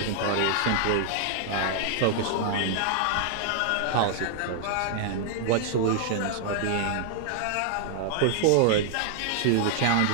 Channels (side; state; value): both; different; correlation 0.00